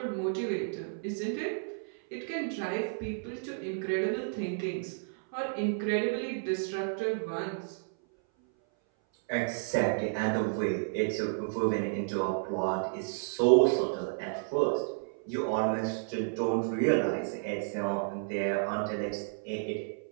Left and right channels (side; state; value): left; silent; 57 dB below the other